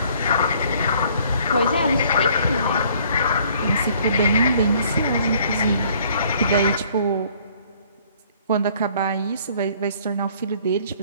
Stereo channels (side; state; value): both; inverted; correlation -0.59